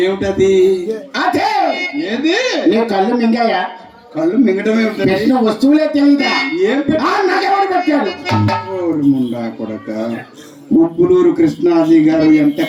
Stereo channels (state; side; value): identical; both; correlation 1.00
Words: ఏమిటది? అదే. ఏది? నీ కళ్ళు మింగాయా? కళ్ళు మింగటమే పెట్టిన వస్తువులే తెలియదా? ఏం నాకెవరు పెట్టారు? ముండా కొడక. ఉప్పులూరు కృష్ణాజీ గారు ఎంత